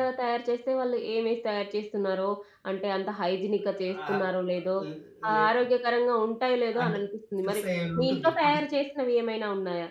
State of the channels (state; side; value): identical; both; correlation 1.00